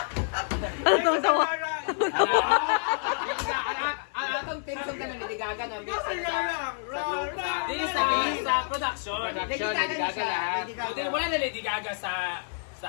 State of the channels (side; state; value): right; silent; digital silence